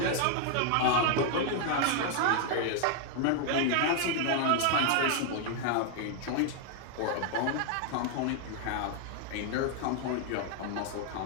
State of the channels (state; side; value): different; both; correlation 0.00